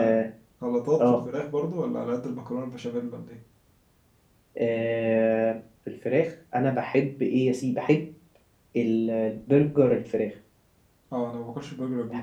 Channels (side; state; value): both; identical; correlation 1.00